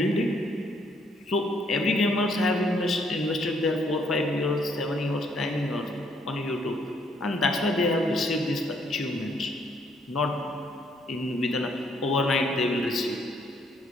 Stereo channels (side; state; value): both; normal; correlation 0.69